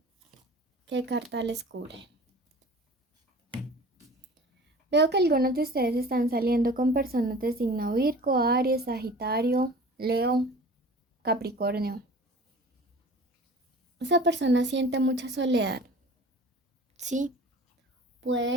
qué carta les cubre. Veo que algunos de ustedes están saliendo con personas de signo Virgo, Aries, Sagitario, Leo, Capricornio. Esa persona siente mucha soledad, ¿sí?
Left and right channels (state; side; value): normal; both; correlation 0.42